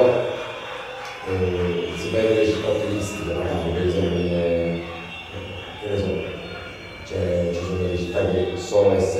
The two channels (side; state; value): both; identical; correlation 1.00